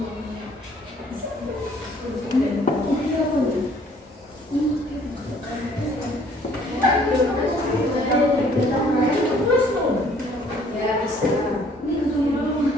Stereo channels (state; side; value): normal; both; correlation 0.59